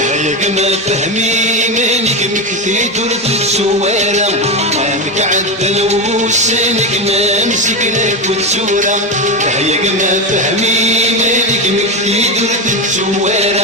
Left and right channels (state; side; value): normal; both; correlation 0.16